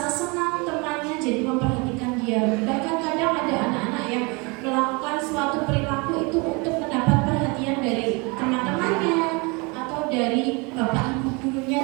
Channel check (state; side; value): quieter; left; 29.0 dB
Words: senang temannya jadi memperhatikan dia. Bahkan kadang ada anak-anak yang melakukan suatu perilaku itu untuk mendapat perhatian dari teman-temannya atau dari Bapak Ibu